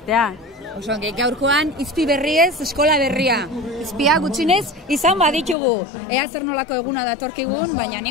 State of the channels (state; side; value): drops out; right; at 5.6 s